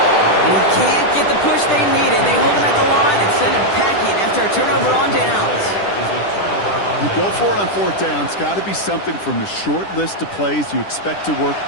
And he can't get the push they needed. They hold him at the line and send him packing after a turnover on downs. You go for it on 4th down. It's got to be something from the short list of plays you expect to work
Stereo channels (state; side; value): late; right; 10 ms